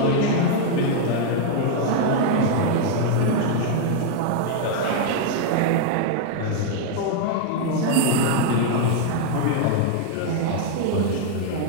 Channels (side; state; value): both; different; correlation 0.00